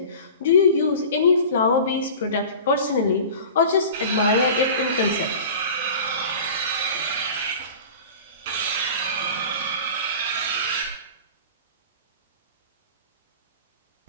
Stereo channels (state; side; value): inverted; both; correlation -0.38